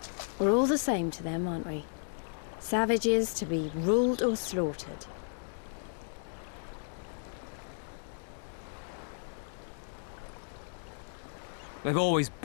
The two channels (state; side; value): silent; right; digital silence